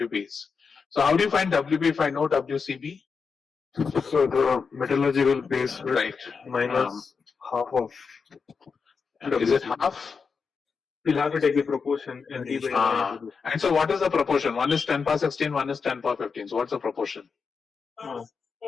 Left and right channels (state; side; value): quieter; right; 5.4 dB